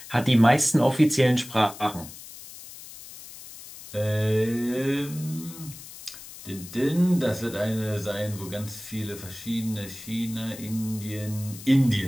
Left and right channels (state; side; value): noise; left; hiss, 15 dB below the sound